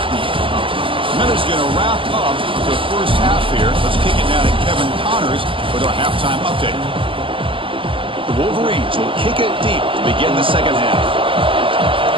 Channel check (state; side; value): late; left; 0.25 ms